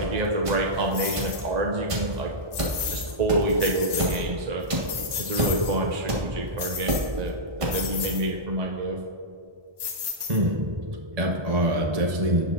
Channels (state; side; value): late; left; 1.2 ms